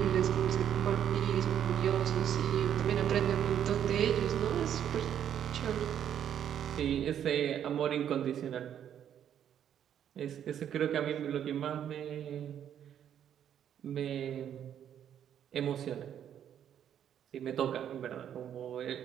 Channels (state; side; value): quieter; left; 9.6 dB